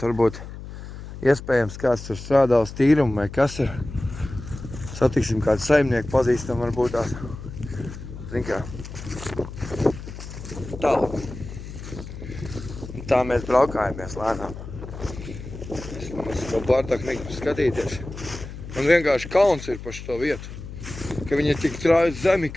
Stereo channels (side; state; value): left; noise; hum, 11 dB below the sound